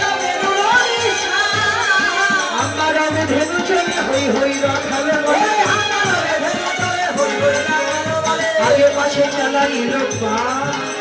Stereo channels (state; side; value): identical; both; correlation 1.00